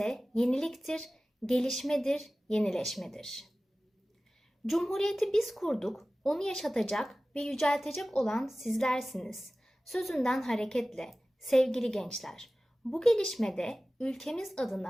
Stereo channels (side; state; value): both; normal; correlation 0.97